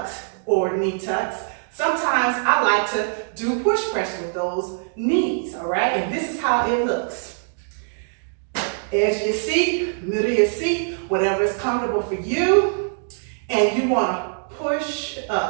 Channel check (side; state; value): left; silent; digital silence